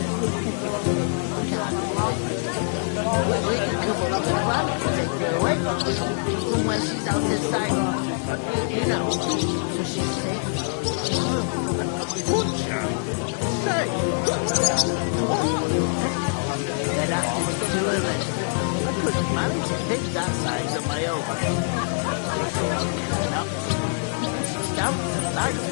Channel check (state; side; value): silent; right; digital silence